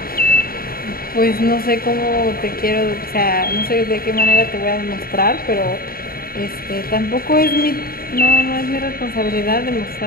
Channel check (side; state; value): right; late; 0.43 ms